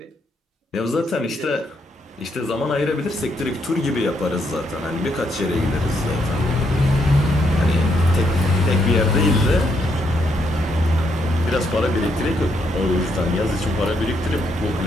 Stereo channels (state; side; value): normal; both; correlation 0.76